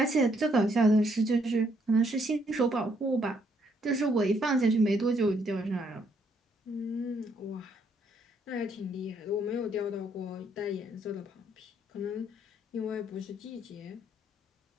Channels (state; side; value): normal; both; correlation 0.71